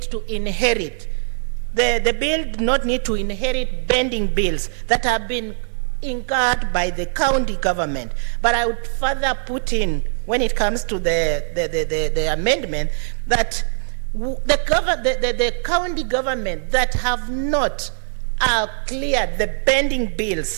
to inherit, the bill do not need to inherit bending bills that have been incurred by the county government. But I would further put in, when it comes to the amendment, that the county government that have not cleared the bending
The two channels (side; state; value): left; silent; 65 dB below the other